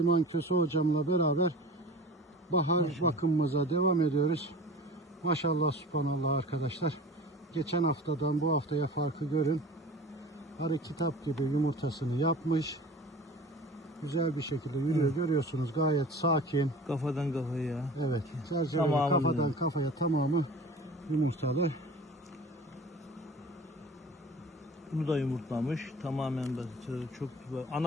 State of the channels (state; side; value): normal; both; correlation 0.40